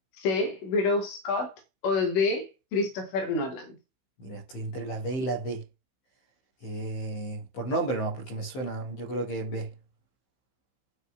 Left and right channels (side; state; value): right; late; 15 ms